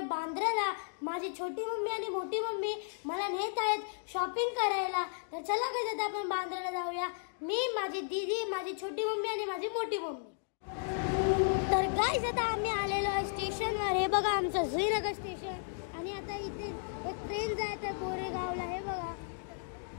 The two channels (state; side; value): silent; right; digital silence